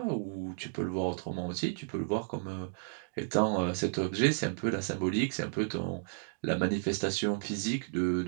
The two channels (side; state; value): left; silent; digital silence